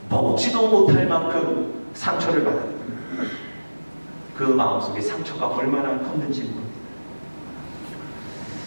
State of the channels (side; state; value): both; inverted; correlation -1.00